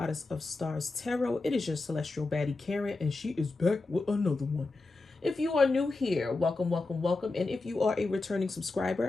of Stars Tarot. It is your celestial baddie, Karen, and she is back with another one. If you are new here, welcome, welcome, welcome. And if you are a returning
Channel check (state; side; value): quieter; right; 3.4 dB